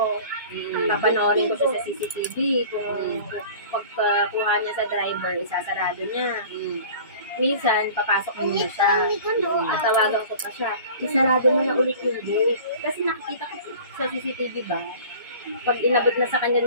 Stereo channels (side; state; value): both; inverted; correlation -0.43